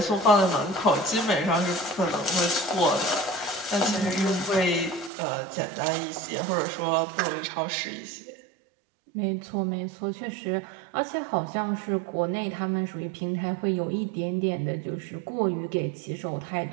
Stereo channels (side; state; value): left; drops out; at 5.1 s